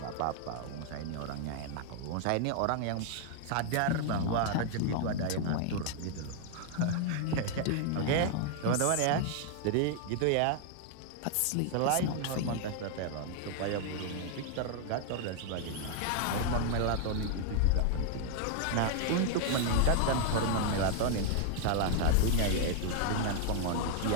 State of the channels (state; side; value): different; both; correlation 0.00